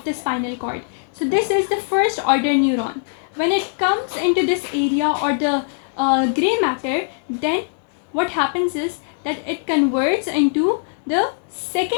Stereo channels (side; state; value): right; silent; digital silence